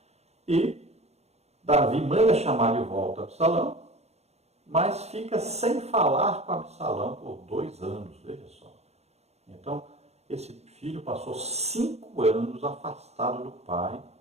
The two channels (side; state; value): left; late; 0.31 ms